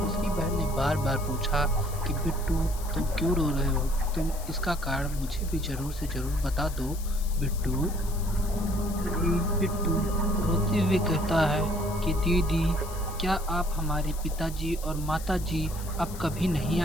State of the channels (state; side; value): noise; left; hiss, 15 dB below the sound